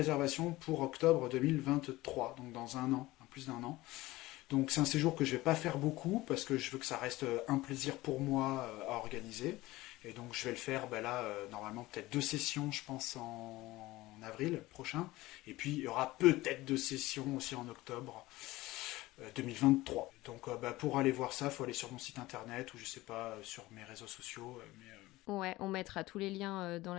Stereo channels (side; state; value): right; quieter; 18.7 dB